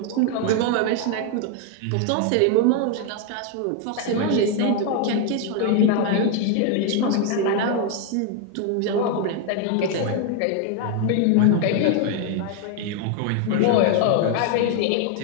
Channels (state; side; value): different; both; correlation 0.01